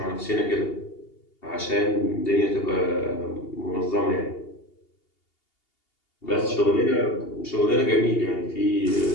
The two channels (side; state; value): right; late; 2.8 ms